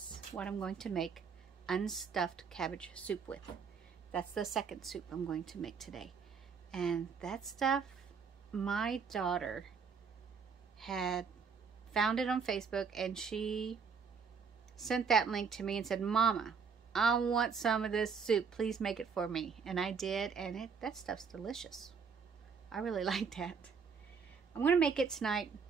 what I'm going to make unstuffed cabbage soup with. That's the second soup I'm going to make today. And that stuff, my daughter had found it on Facebook, and she sent that link to me and said, Mama, I want some of this soup. Please make it for me. And I did, and that stuff's delicious. I really like that. I'm going to make it tonight.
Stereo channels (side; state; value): left; quieter; 5.8 dB